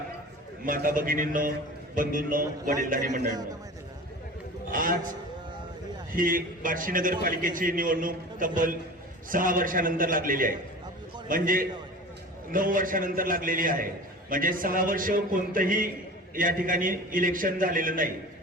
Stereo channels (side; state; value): both; normal; correlation 0.37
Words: माता भगिनींनो, बंधूंनो, वडीलधारी मंडळींनो, आज ही बार्शी नगरपालिकेची निवडणूक तब्बल 6 वर्षानंतर लागलेली आहे. म्हणजे 9 वर्षानंतर लागलेली आहे. म्हणजे 6 वर्ष कोणतंही या ठिकाणी इलेक्शन झालेलं नाही.